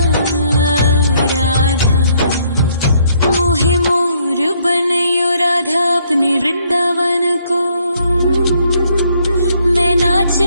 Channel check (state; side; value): inverted; both; correlation -0.67